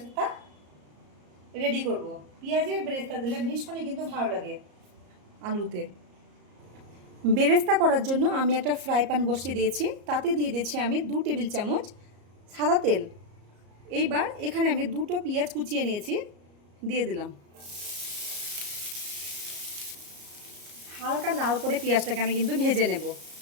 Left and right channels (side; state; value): left; late; 34 ms